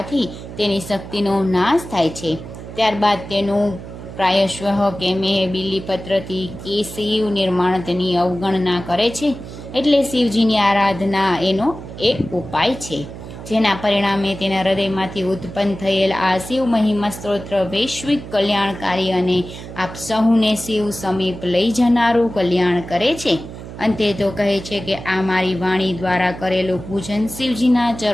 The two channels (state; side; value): noise; right; hum, 12 dB below the sound